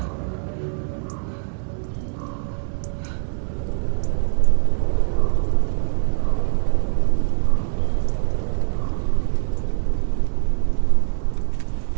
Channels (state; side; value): silent; left; 64 dB below the other